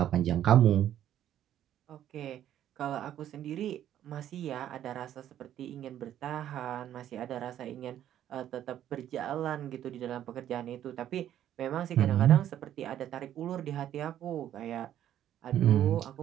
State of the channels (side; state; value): left; quieter; 11.3 dB